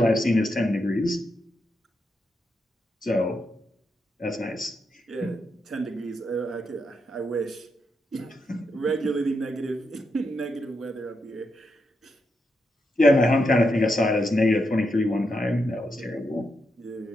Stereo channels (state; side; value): normal; both; correlation 0.83